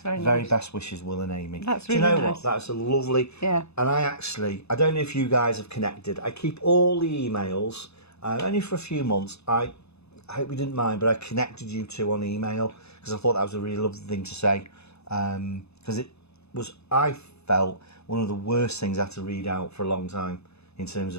very Very nice. Best wishes, Will and Amy. That's Do you really know nice. what? That's a lovely... Yeah. And I don't know if you guys have connected. I keep all the emails, only for a few months. I hope you didn't mind, but I connected you two on email because I thought that was a really lovely thing to say. Because it was, I felt, one of the worst things I had to read out for a long time in terms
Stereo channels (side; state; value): right; late; 0.79 ms